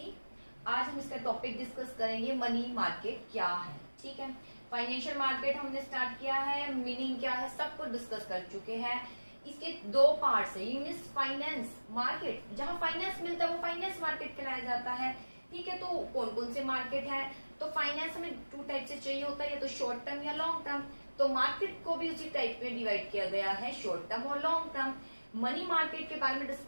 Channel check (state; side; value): inverted; both; correlation -1.00